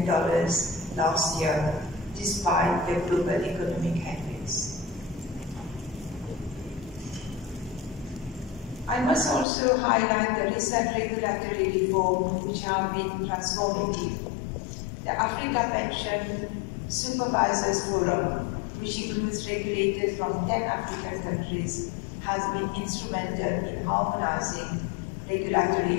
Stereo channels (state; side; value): drops out; right; at 9.5 s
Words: last year, despite the global economic headwinds. I must also highlight the recent regulatory reform which have been transformative. The Africa Pension Supervisors Forum, which includes regulators from 10 African countries, has been instrumental in harmonizing regulatory